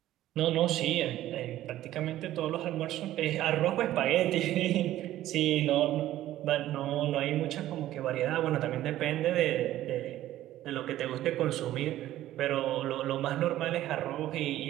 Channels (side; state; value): left; quieter; 13.9 dB